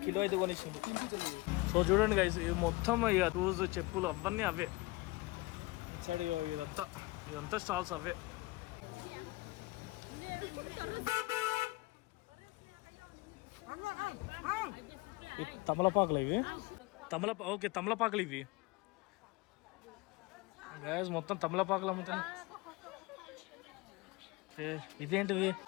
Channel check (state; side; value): quieter; right; 22.4 dB